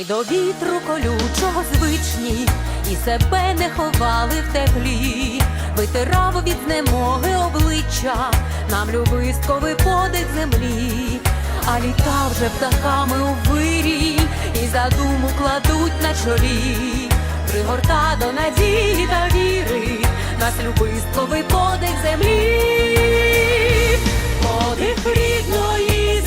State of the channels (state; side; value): identical; both; correlation 1.00